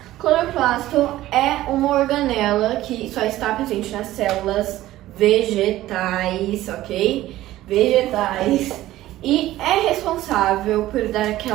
Cloroplasto é uma organela que só está presente nas células vegetais, ok? Vegetais. E é responsável por dar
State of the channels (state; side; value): quieter; left; 15.3 dB